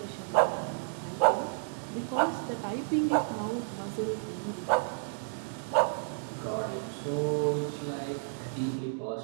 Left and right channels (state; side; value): silent; left; digital silence